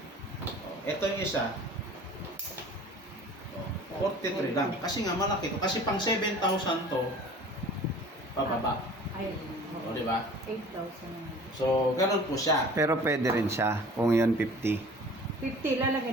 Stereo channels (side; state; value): both; normal; correlation 0.45